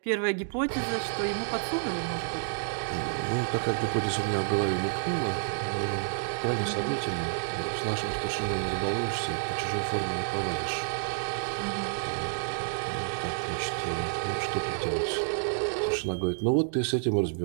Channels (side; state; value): left; silent; digital silence